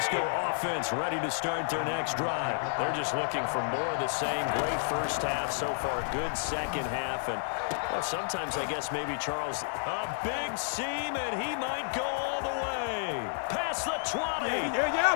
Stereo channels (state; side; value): silent; right; digital silence